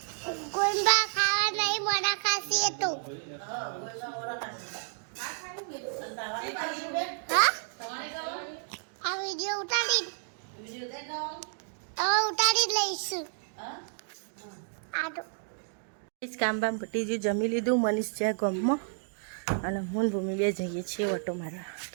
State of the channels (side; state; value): left; silent; digital silence